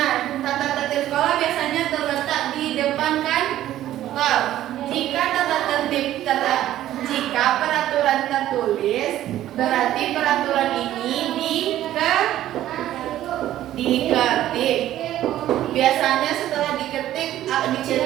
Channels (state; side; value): quieter; left; 13.1 dB